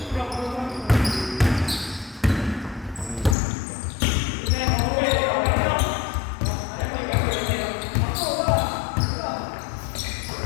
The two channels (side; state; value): right; drops out; at 3.4 s